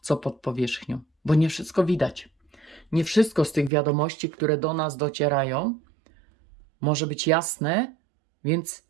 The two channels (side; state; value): left; drops out; at 3.7 s